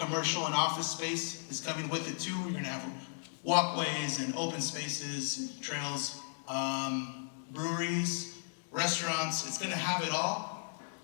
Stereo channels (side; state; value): right; silent; digital silence